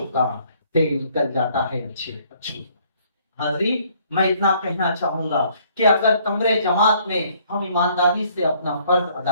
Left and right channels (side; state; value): both; inverted; correlation -0.63